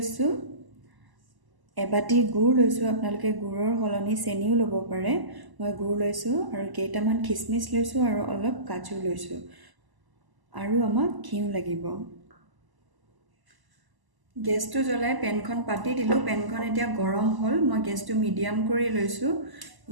এবাটি গুড় লৈছোঁ। আপোনালোকে গুড়ৰ সলনি চেনিও ল'ব পাৰে। মই গুড় লৈছোঁ আৰু কেইটামান খিচমিচ লৈছোঁ আৰু অলপ কাজু লৈছোঁ। আৰু আমাক ঘিউ লাগিব। গেছটো জ্বলাই পেনখন পাতি দিলোঁ। পেনখন এতিয়া গৰম হ'ল। মই গেছটো মিডিয়াম কৰি লৈছোঁ।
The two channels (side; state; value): left; late; 1.0 ms